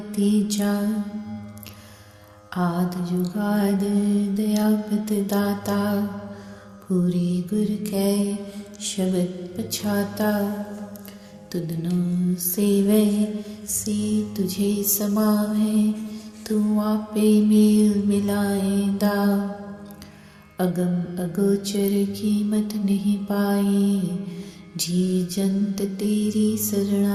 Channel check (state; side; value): identical; both; correlation 1.00